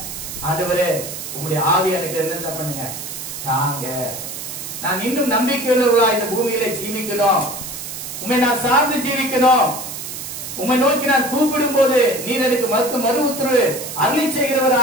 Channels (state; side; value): noise; right; hiss, 8 dB below the sound